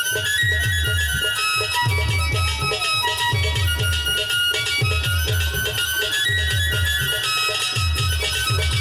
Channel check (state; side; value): identical; both; correlation 1.00